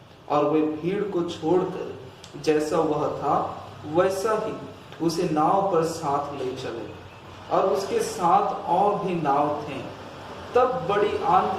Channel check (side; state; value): both; identical; correlation 1.00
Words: और वे भीड़ को छोड़कर जैसा वह था वैसा ही उसे नाव पर साथ ले चले, और उसके साथ और भी नाव थे। तब बड़ी